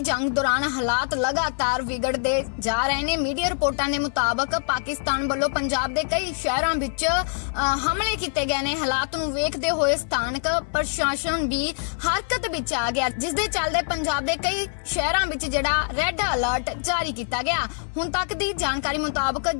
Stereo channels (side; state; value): right; silent; 62 dB below the other